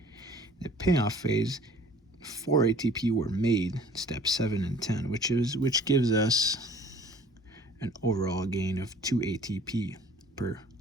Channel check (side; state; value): both; normal; correlation 0.51